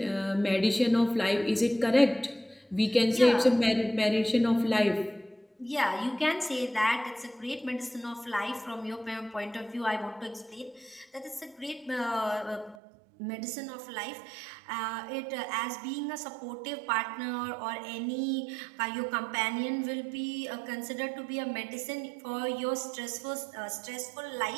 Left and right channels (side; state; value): left; drops out; at 12.8 s